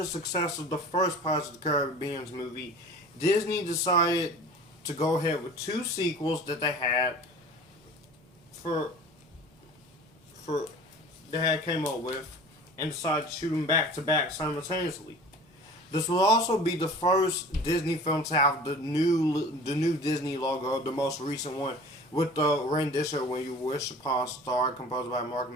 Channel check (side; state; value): both; normal; correlation 0.42